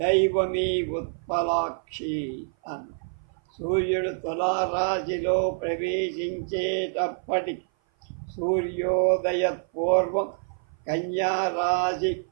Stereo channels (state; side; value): silent; left; 56 dB below the other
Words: ఉత్పలాక్షి అన్న. సూర్యుడు తులారాశిలో ప్రవేశించేటప్పటి సూర్యోదయ పూర్వం కన్యారాశి